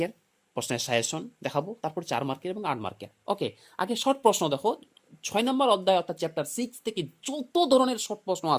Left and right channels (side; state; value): both; identical; correlation 1.00